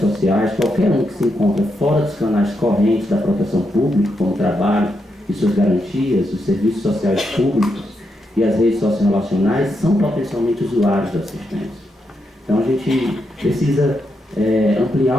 qualquer um que se encontra fora dos canais correntes da proteção pública, como o trabalho e suas garantias, os serviços sociais públicos e as redes sociorrelacionais, são potencialmente usuários da assistência. Então a gente precisa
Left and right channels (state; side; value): normal; both; correlation 0.82